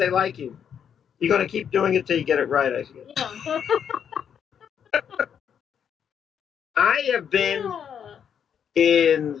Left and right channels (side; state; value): right; quieter; 8.1 dB